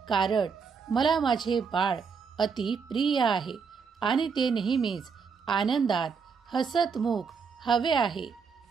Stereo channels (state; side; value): quieter; left; 5.7 dB